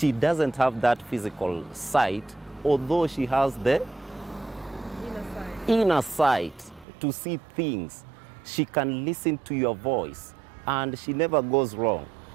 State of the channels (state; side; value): drops out; left; at 6.9 s